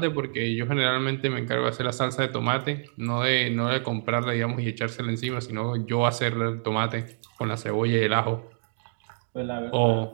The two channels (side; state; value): left; silent; digital silence